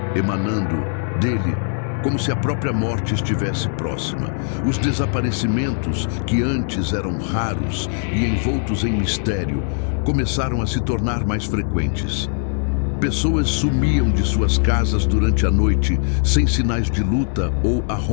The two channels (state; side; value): silent; right; digital silence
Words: emanando dele como se a própria morte estivesse próxima. Os desaparecimentos, que antes eram raros e envoltos em mistério, começaram a se tornar mais frequentes. Pessoas sumiam de suas casas durante a noite, sem sinais de luta ou